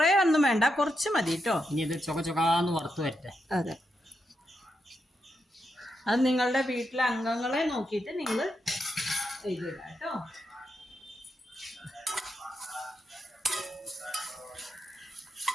ഒന്നും വേണ്ട, കുറച്ച് മതി കേട്ടോ. ഇനി ഇത് ചൊകാന്ന് വറുത്ത് വരട്ടെ. അതെ, അത് നിങ്ങളുടെ വീട്ടിലെ അംഗങ്ങളെ നോക്കിയിട്ട് നിങ്ങൾ ചെയ്തിടാം കേട്ടോ.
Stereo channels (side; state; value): both; normal; correlation 0.84